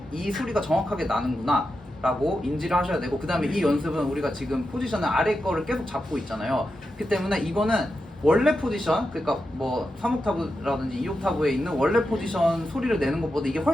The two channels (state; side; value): normal; both; correlation 0.88